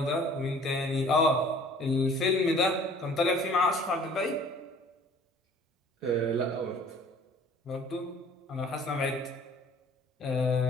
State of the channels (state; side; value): normal; both; correlation 0.52